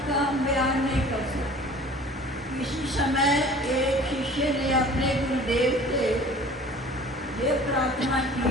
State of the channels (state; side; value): normal; both; correlation 0.46